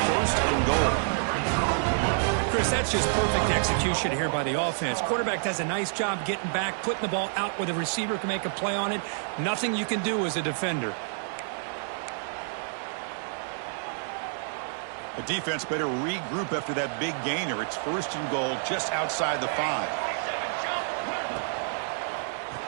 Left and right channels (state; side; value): silent; left; digital silence